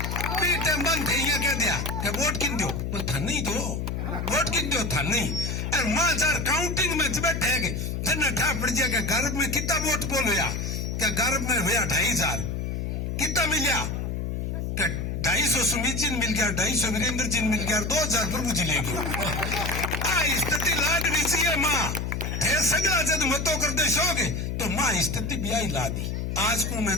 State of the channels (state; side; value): noise; left; hum, 3 dB below the sound